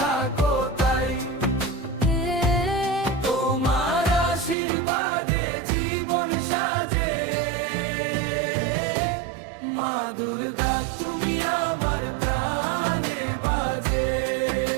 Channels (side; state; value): left; drops out; at 4.5 s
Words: তাই, তোমার আশীর্বাদে জীবন সাজে। মা দুর্গা তুমি আমার প্রাণে বাজে।